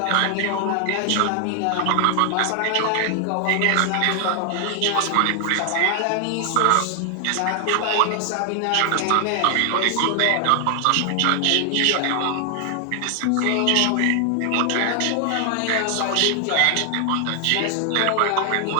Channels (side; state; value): both; different; correlation 0.00